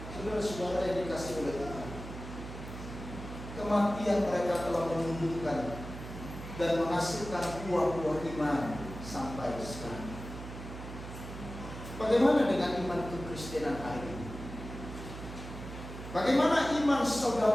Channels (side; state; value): right; noise; hum, 10 dB below the sound